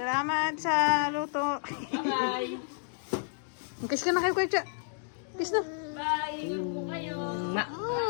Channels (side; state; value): right; silent; digital silence